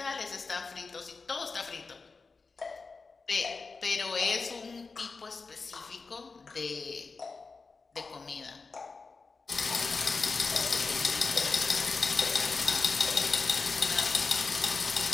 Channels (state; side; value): quieter; right; 4.3 dB